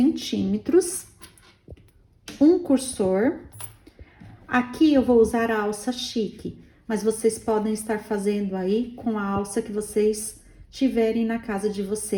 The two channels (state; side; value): identical; both; correlation 1.00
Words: um cursor. Aqui eu vou usar a alça chique, mas vocês podem estar fazendo aí com a alça que vocês tiverem na casa de